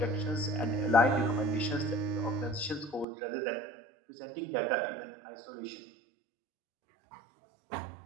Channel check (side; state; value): left; drops out; at 3.1 s